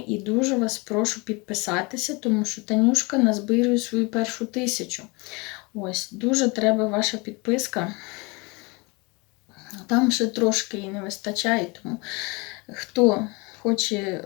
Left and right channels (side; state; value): right; quieter; 27.5 dB